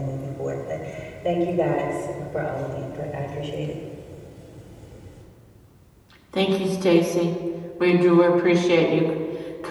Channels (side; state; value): both; identical; correlation 1.00